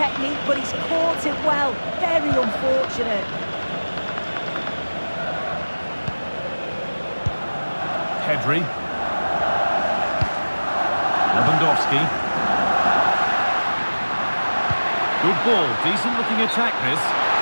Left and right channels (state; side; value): inverted; both; correlation -1.00